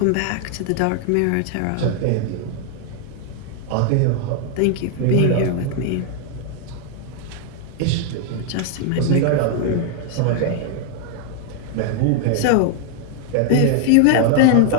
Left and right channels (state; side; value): different; both; correlation 0.00